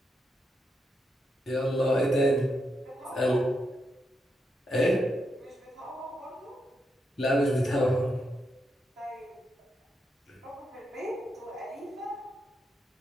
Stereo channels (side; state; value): both; normal; correlation 0.83